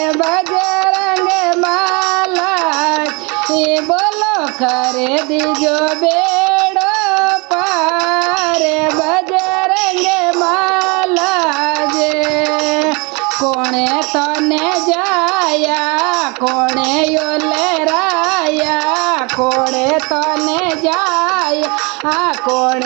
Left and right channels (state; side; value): quieter; left; 29.4 dB